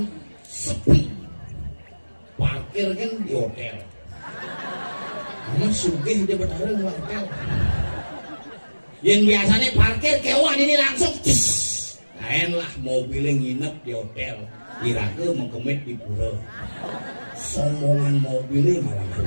sepi. Parkir kan di hotel. Kamu sugih dia bertarung di hotel. Yang biasanya parkir kewan ini langsung lain lah mobilnya nginep di hotel. Kira-kira mengkemit di pura. Sombongan mobilnya malah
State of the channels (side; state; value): both; inverted; correlation -1.00